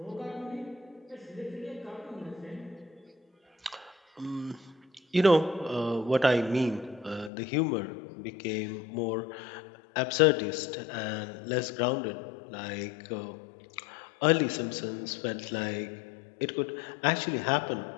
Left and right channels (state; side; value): drops out; right; at 7.3 s